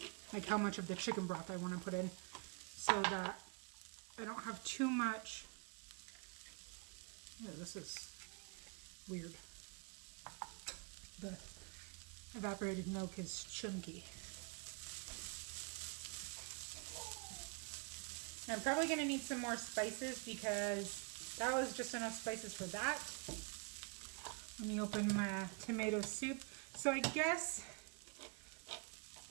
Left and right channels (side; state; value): left; quieter; 33.3 dB